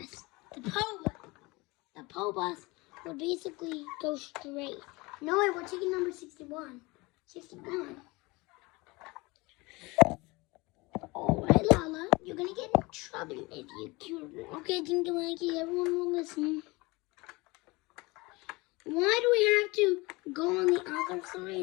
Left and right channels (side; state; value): right; quieter; 24.0 dB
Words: The PO bus will basically go straight. No, wait, we're taking number 61. 61. Alright, Lala, you're gonna get in trouble if you cute. Okay, Dinky Winky, everyone will listen. Why do we have to go on the other